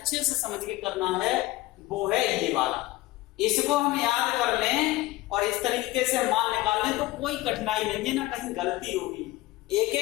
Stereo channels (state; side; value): quieter; right; 18.4 dB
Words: से समझ के करना है वो है ये वाला। इसको हम याद कर लें और इस तरीके से मान निकाल लें तो कोई कठिनाई नहीं है, ना कहीं गलती होगी। एक